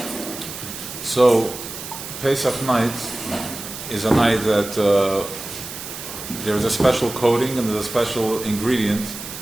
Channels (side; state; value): right; noise; hiss, 10 dB below the sound